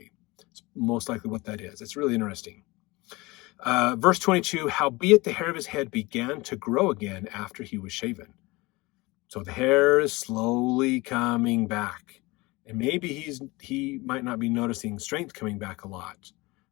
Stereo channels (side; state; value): right; quieter; 22.8 dB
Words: It's most likely what that is. It's really interesting. Verse 22, howbeit the hair of his head began to grow again after he was shaven. So the hair is slowly coming back. And maybe he might not be noticing strength coming back a lot,